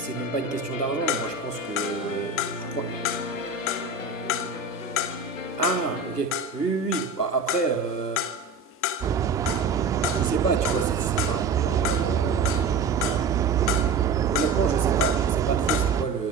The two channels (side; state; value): left; quieter; 3.9 dB